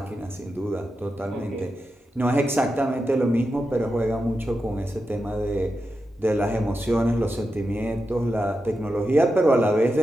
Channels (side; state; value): both; normal; correlation 0.89